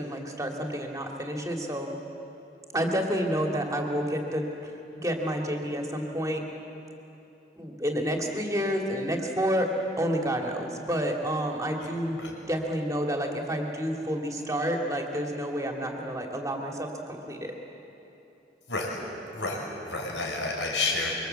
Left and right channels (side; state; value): both; normal; correlation 0.56